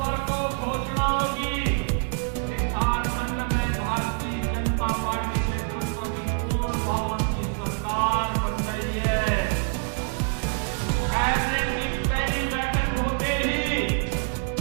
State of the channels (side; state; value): left; silent; 56 dB below the other